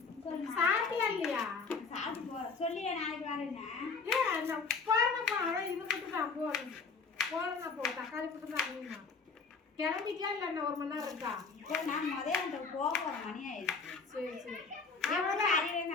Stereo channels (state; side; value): quieter; right; 4.7 dB